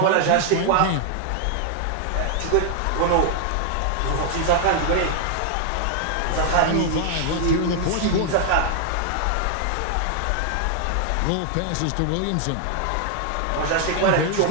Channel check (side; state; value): both; different; correlation 0.00